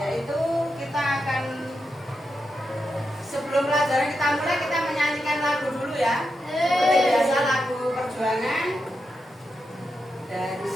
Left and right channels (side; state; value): both; normal; correlation 0.86